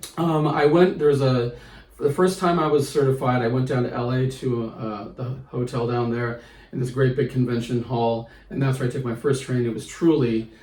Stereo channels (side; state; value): both; identical; correlation 1.00